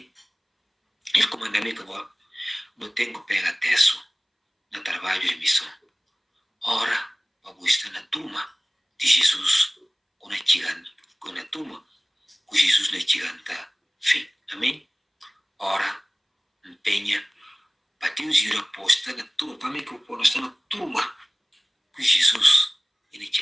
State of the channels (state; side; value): identical; both; correlation 1.00